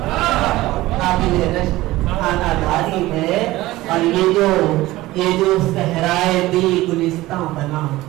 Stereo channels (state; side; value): quieter; left; 17.7 dB